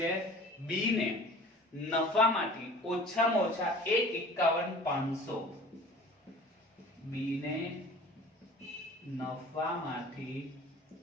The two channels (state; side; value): normal; both; correlation 0.45